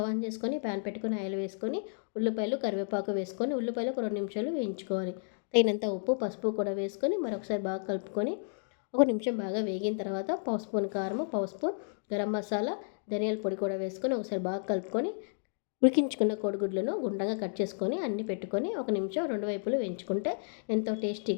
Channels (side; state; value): right; silent; digital silence